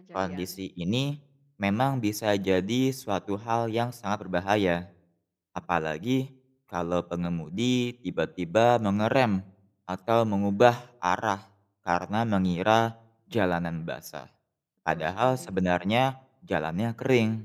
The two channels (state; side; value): identical; both; correlation 1.00